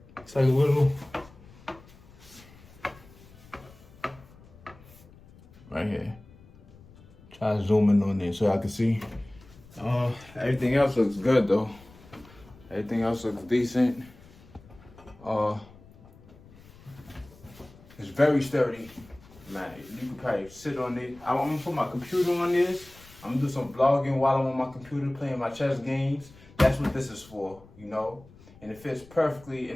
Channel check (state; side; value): noise; left; rumble, 23 dB below the sound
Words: It's like a little. Right here. Try to zoom in on it so I can see. Everything else looks good though. Everything else looks decent. It's very sturdy. Man, you can probably sit on it. I'm gonna put my computer on this. I'm gonna do some vlogging while I'm on my computer playing my chess games. That's what this is for, you know? And it fits perfectly